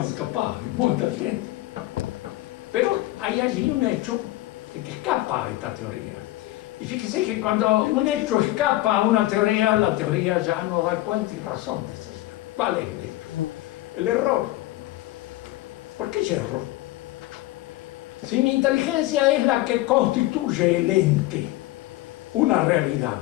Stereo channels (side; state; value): right; quieter; 17.1 dB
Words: capaz y muy inteligente. Pero hay allí un hecho que escapa a esta teoría. Y fíjese que cuando un hecho escapa a una teoría, la teoría ya no da cuenta y razón de ser. ¿Cuál es el hecho? El error. ¿Por qué yerro? Si mi inteligencia es la que constituye el ente, una realidad,